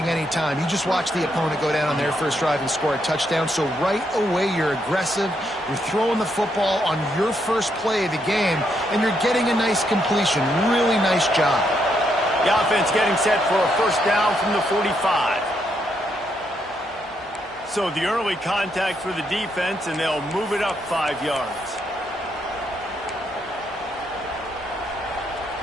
any time. You just watch the opponent go down on their first drive and score a touchdown. So right away, you're aggressive. You're throwing the football on your first play of the game, and you're getting a nice completion. Really nice job. The offense getting set for a first down from the 45. So the early contact for the defense, and they'll move it up 5 yards.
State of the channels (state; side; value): normal; both; correlation 0.77